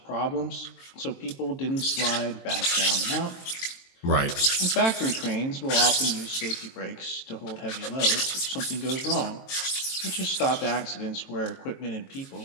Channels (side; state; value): right; late; 22 ms